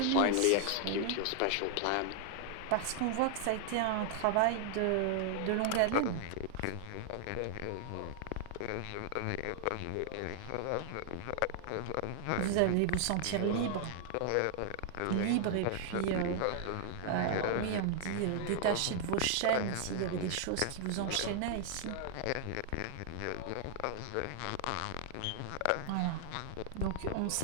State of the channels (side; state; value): both; different; correlation 0.00